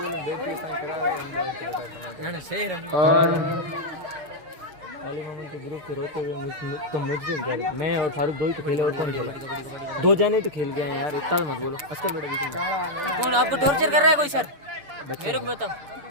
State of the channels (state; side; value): late; left; 7.0 ms